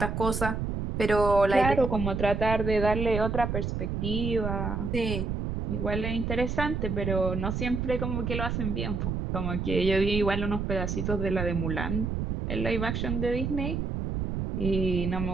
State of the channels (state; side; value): noise; right; rumble, 2 dB below the sound